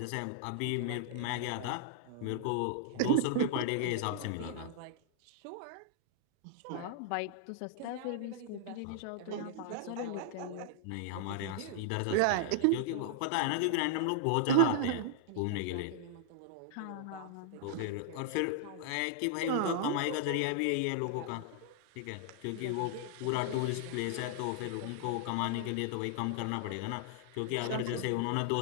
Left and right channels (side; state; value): both; different; correlation -0.01